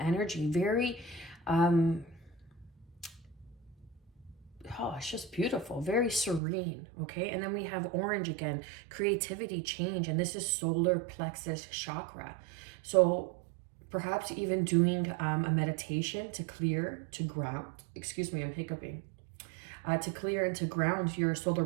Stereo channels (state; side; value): drops out; left; at 6.4 s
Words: Oh, it's just beautiful, very serene, okay? And then we have orange again, creativity, change, and this is solar plexus chakra. So perhaps even doing a meditation to clear, to ground, excuse me, I'm hiccuping, to clear and to ground your solar